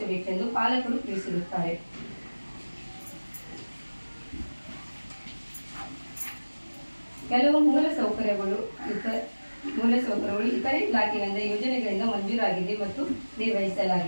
ಪಾಲಕರು ತಿಳಿಸಿರುತ್ತಾರೆ. ಕೆಲವು ಮೂಲಸೌಕರ್ಯಗಳು ಇತರೆ ಇಲಾಖೆಗಳಿಂದ ಯೋಜನೆಗಳಿಂದ ಮಂಜೂರಾಗಿದೆ ಮತ್ತು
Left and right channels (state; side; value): inverted; both; correlation -1.00